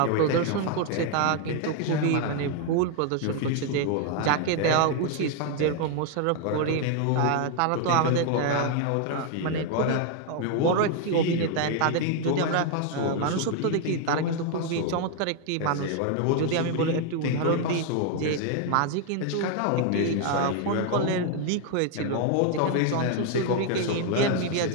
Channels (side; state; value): both; different; correlation 0.00